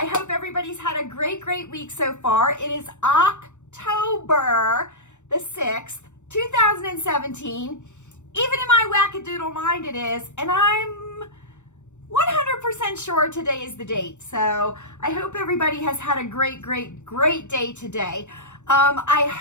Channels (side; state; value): right; late; 0.84 ms